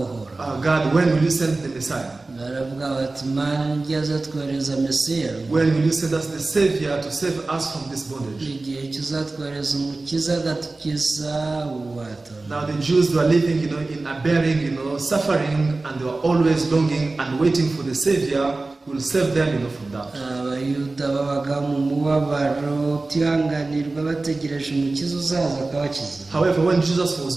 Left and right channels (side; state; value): left; quieter; 3.3 dB